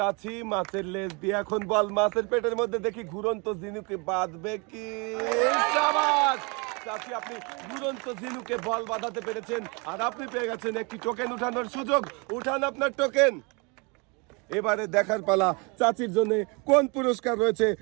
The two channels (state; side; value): quieter; left; 30.7 dB